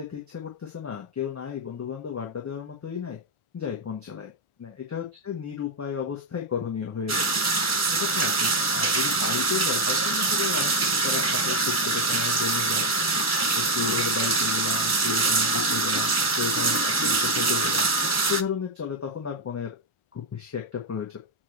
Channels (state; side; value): late; right; 1.4 ms